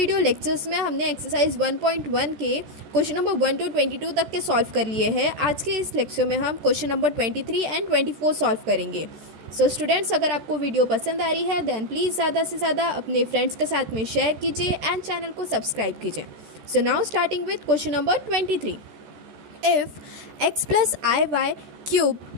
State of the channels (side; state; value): left; late; 14 ms